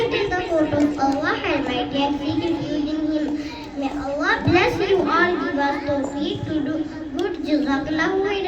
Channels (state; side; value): identical; both; correlation 1.00